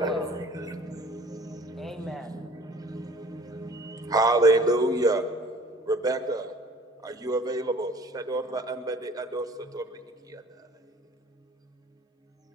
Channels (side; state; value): both; normal; correlation 0.49